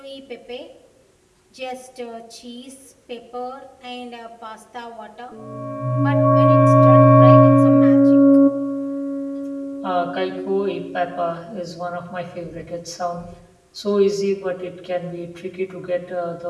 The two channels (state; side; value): identical; both; correlation 1.00